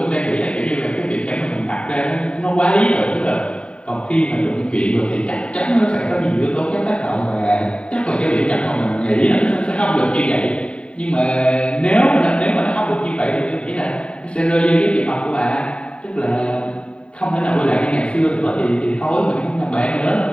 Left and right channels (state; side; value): late; right; 0.055 ms